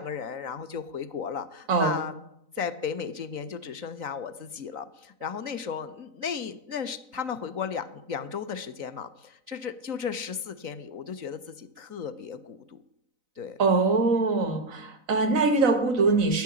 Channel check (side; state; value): left; late; 3.9 ms